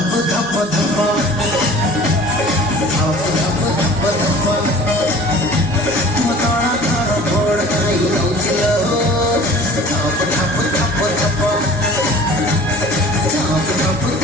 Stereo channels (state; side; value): normal; both; correlation 0.45